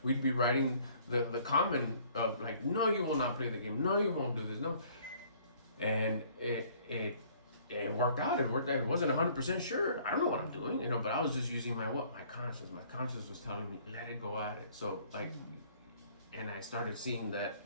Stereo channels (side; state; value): both; inverted; correlation -0.58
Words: we'd be writing the comment of like, no, you will not play the game. No, you won't do this. No. And it worked out. It worked out. It wasn't 100% sure. I don't know what I'm doing, but I was just using my conscience. My conscience was telling me, let it go at it. So like, and I started seeing that